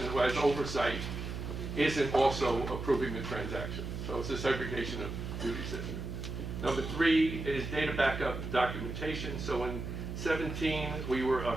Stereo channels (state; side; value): noise; right; hum, 6 dB below the sound